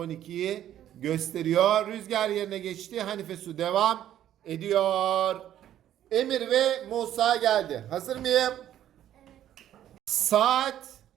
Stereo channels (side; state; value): left; quieter; 11.5 dB